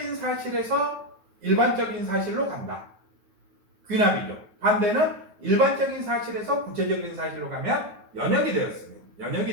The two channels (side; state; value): left; late; 9.3 ms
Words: 사실에서 일반적인 사실로 간다. 귀납이죠. 반대는 일반적인 사실에서 구체적인 사실로 가면